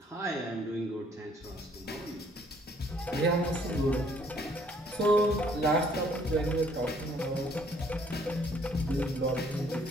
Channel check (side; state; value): both; normal; correlation 0.63